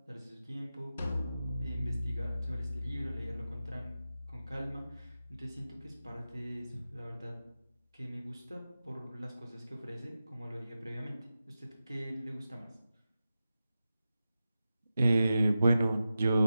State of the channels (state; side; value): inverted; both; correlation -0.92